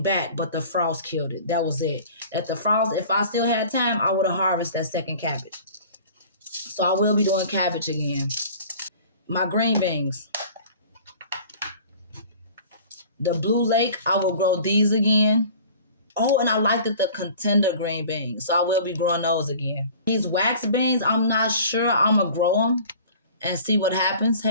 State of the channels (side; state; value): both; inverted; correlation -0.45